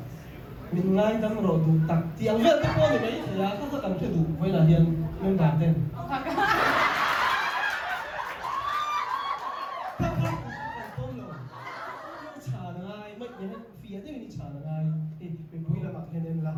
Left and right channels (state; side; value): identical; both; correlation 1.00